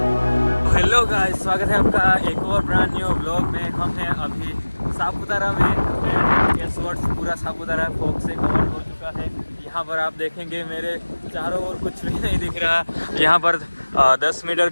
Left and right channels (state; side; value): inverted; both; correlation -1.00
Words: हेलो गाइस, स्वागत है आपका एक और ब्रांड न्यू व्लॉग में। हम हैं अभी सापुतारा में एंड गेस व्हाट, पूरा सापुतारा फॉग से कवर हो चुका है। यहाँ पर आप देखेंगे मेरे चारों ओर कुछ भी नहीं दिख रहा। यहाँ पर 10 मीटर